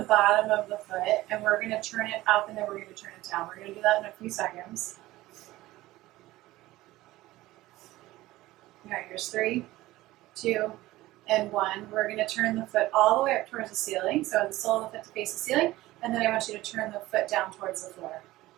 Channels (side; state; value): left; quieter; 17.4 dB